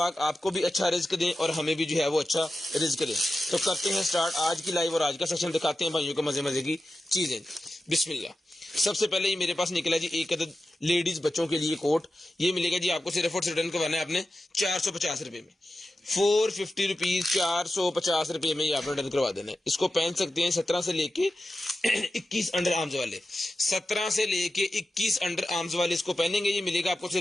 आपको भी अच्छा रिज्क दें और हमें भी जो है वो अच्छा रिज्क दें। तो करते हैं स्टार्ट आज की लाइव और आज का सेशन दिखाते हैं भाइयों को मजे मजे की चीजें। बिस्मिल्लाह। सबसे पहले ये मेरे पास निकला जी एक अदद लेडीज बच्चों के लिए कोट। ये मिलेगा जी आपको सिर्फ और रिटर्न करवाना है आपने 450 रुपए में, 450 रुपीज, 450 रुपए में ये आपने रिटर्न करवा देना है। इसको पहन सकते हैं 17 से लेके 21 अंडर आर्म्स वाले, 17 से लेके 21 अंडर आर्म्स वाले इसको पहनेंगे। ये मिलेगा आपको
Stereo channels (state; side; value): normal; both; correlation 0.92